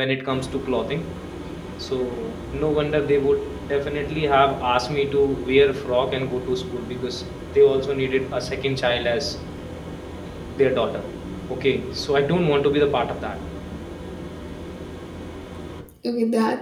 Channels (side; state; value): both; identical; correlation 1.00